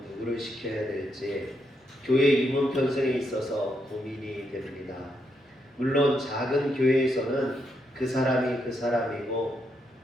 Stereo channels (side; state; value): both; normal; correlation 0.79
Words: 누구를 시켜야 될지 교회 임원 편성에 있어서 고민이 됩니다. 물론 작은 교회에서는 그 사람이 그 사람이고